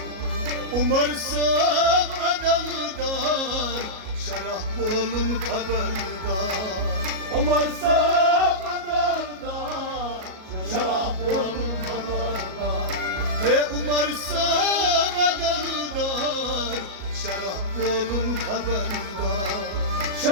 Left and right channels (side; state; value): left; late; 37 ms